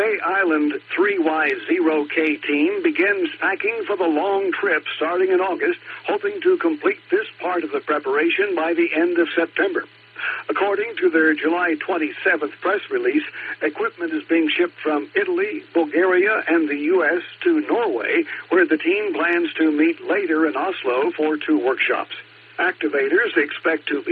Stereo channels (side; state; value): both; identical; correlation 1.00